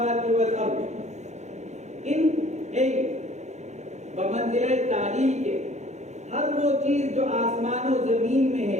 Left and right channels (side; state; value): left; late; 0.33 ms